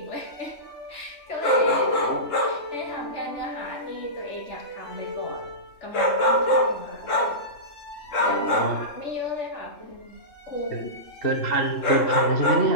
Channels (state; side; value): late; right; 3.2 ms